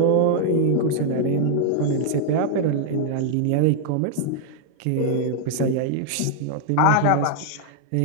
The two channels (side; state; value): both; different; correlation 0.00